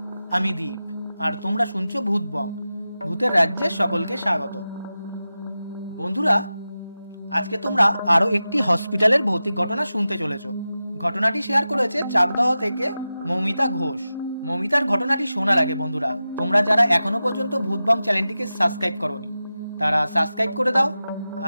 আমি দীপ আর তোমরা শুনছো ভূতবং, ভূতের রাজ্যে সকলকে স্বাগত। বন্ধুরা, আজকে তোমরা আরও একটি হসপিটালের ভৌতিক ঘটনা শুনতে চলেছ। ঘটনাটি শেয়ার করেছে চাকদহ থেকে মৌমিতা ঘোষ। মৌমিতার ঘটনাটি শোনার আগে বন্ধুরা, তোমরা যারা এখনো পর্যন্ত ভূতবং চ্যানেলটিকে সাবস্ক্রাইব করোনি তারা সাবস্ক্রাইব করে দাও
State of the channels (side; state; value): both; inverted; correlation -0.94